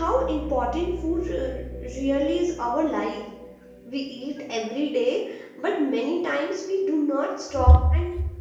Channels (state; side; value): identical; both; correlation 1.00